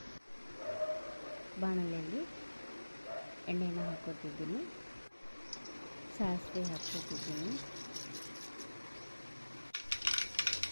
ಬಾಣಲೆಯಲ್ಲಿ ಎಣ್ಣೆನ ಹಾಕೋತಿದ್ದೀನಿ, ಸಾಸಿವೆ ಹಾಕ್ಕೋತಿದ್ದೀನಿ,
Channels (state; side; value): inverted; both; correlation -1.00